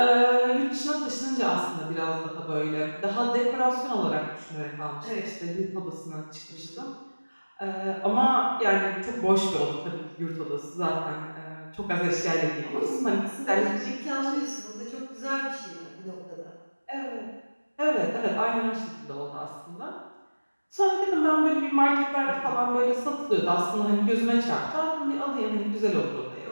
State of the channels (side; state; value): both; inverted; correlation -1.00